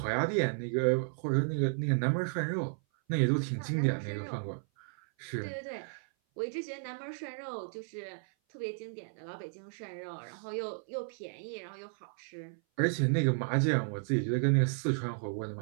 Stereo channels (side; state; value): left; silent; 55 dB below the other